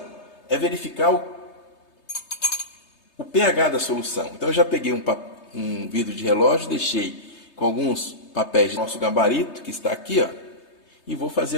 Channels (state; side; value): late; right; 3.3 ms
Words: é verificar o pH da solução. Então eu já peguei um vidro de relógio, deixei com alguns papéis do nosso gabarito, que está aqui, ó, e vou fazer